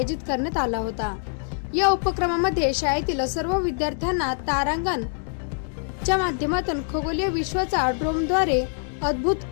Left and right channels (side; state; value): right; silent; 56 dB below the other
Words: करण्यात आला होता। या उपक्रमामध्ये शाळेतील सर्व विद्यार्थ्यांना तारांगण च्या माध्यमातून खगोलीय विश्वाचा ड्रोनद्वारे अद्भुत